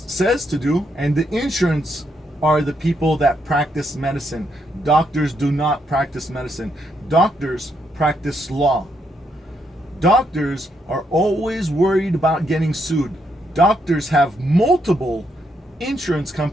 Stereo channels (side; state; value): both; normal; correlation 0.77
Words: says to do, and the insurance are the people that practice medicine, doctors do not practice medicine. Doctors practice law. Doctors are always worried about getting sued. Doctors have multiple insurance